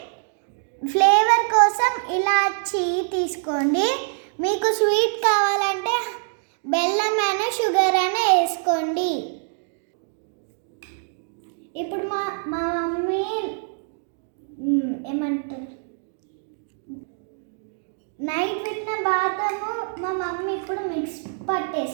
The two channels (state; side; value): silent; left; digital silence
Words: ఫ్లేవర్ కోసం ఇలాచీ తీసుకోండి. మీకు స్వీట్ కావాలంటే బెల్లం అయినా షుగర్ అయినా వేసుకోండి. ఇప్పుడు మా మమ్మీ ఏమంటారు, నైట్ పెట్టిన బాదము మా మమ్మీ ఇప్పుడు మిక్స్